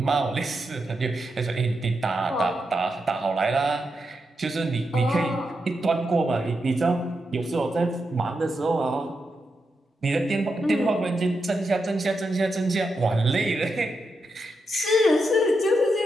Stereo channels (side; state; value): both; normal; correlation 0.85